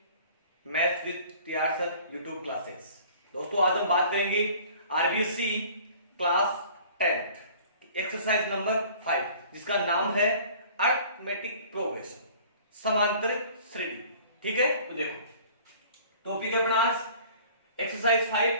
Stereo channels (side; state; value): both; inverted; correlation -0.49